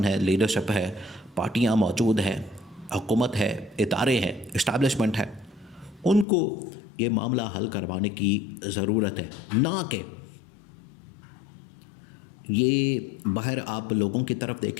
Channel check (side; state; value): right; drops out; at 6.2 s